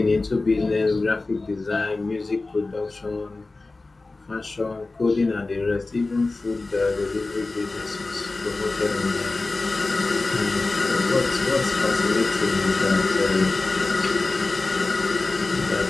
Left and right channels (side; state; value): right; quieter; 3.4 dB